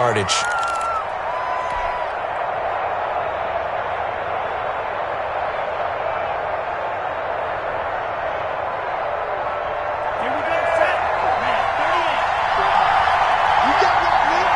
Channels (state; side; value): identical; both; correlation 1.00